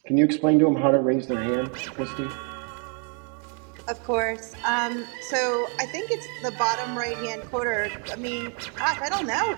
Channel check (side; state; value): left; quieter; 38.7 dB